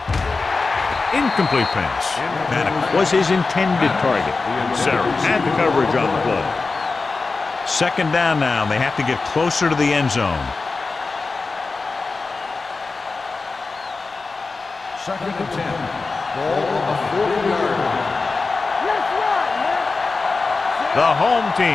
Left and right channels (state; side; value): quieter; right; 4.0 dB